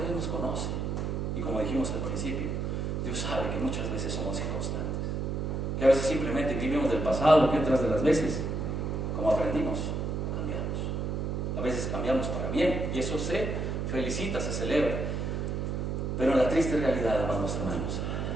Dios nos conoce, y como dijimos al principio, Dios sabe que muchas veces somos inconstantes, que a veces simplemente vivimos del pasado, que otras de las veces, como aprendimos, cambiamos. A veces cambiamos para bien, y eso se felicita, se celebra. Pero en la triste realidad, amados hermanos,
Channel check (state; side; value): noise; right; hum, 1 dB below the sound